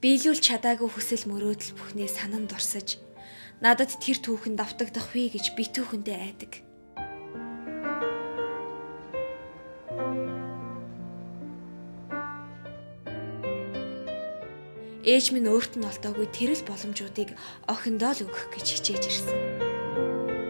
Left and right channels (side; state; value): both; inverted; correlation -1.00